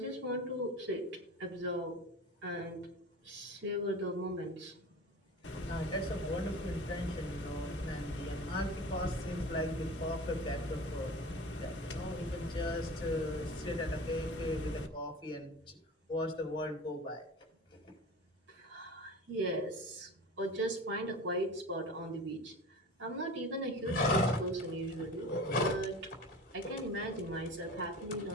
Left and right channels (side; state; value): both; normal; correlation 0.35